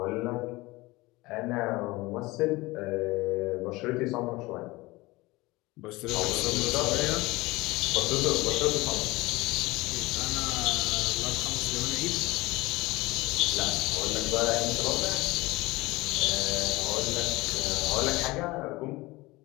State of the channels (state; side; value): quieter; right; 21.4 dB